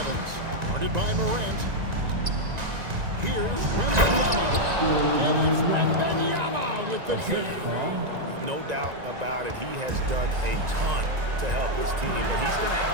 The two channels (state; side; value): late; left; 1.9 ms